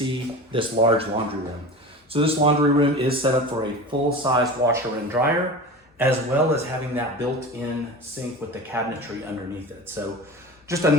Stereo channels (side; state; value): both; normal; correlation 0.32